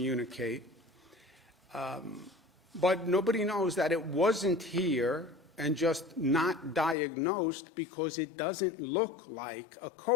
But nobody knows that it wasn't here and just not diagnosed because it doesn't look like a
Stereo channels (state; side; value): drops out; right; at 7.0 s